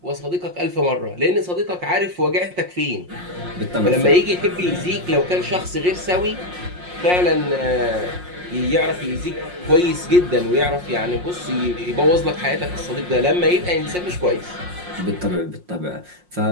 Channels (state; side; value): late; left; 5.6 ms